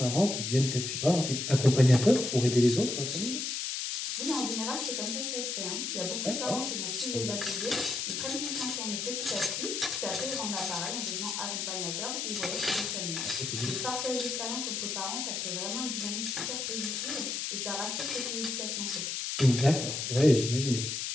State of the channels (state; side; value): noise; left; hiss, 2 dB below the sound